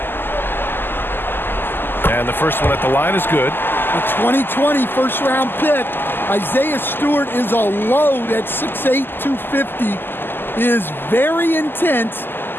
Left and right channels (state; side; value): late; right; 0.097 ms